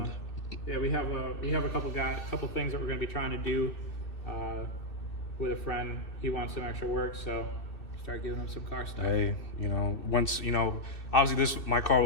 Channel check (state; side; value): late; right; 2.6 ms